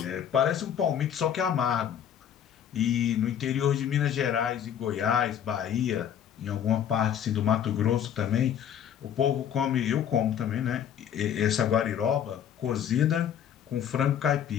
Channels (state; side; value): quieter; right; 9.3 dB